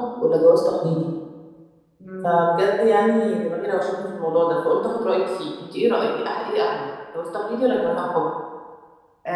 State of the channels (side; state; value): both; identical; correlation 1.00